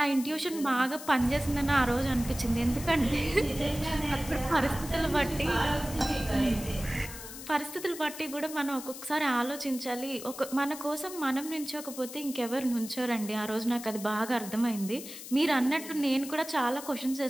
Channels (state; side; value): noise; left; hiss, 12 dB below the sound